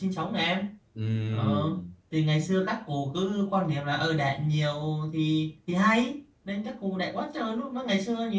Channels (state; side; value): identical; both; correlation 1.00